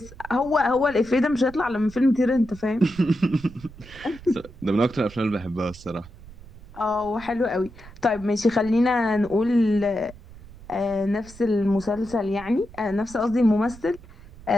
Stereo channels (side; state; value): right; noise; rumble, 19 dB below the sound